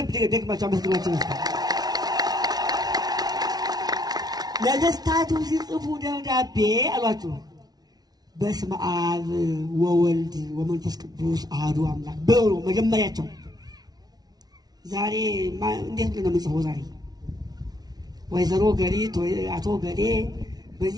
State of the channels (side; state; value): left; late; 0.19 ms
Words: ደግማቸው አመስግኗቸው። ነገሥታቱ ሲጽፉ ደብዳቤ አሏችሁ በስመ አብ ወወልድ ወመንፈስ ቅዱስ አሐዱ አምላክ ብለው ነው መጀመሪያቸው። ዛሬ እንዴት ብለን ነው የምንጽፈው? ዛሬ ወይዘሮ ገሪት ወይ አቶ ገሌ